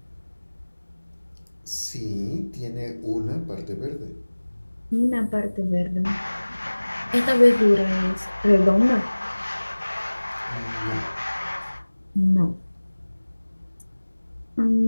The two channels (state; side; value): inverted; both; correlation -1.00